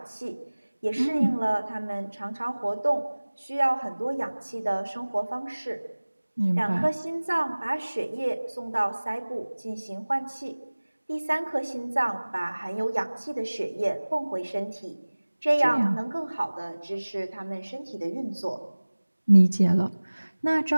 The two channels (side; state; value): both; inverted; correlation -1.00